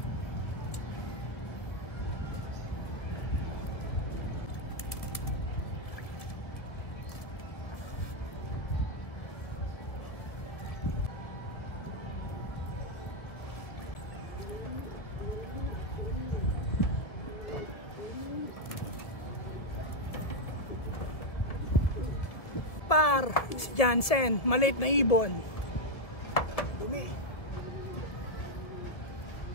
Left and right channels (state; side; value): late; right; 1.9 ms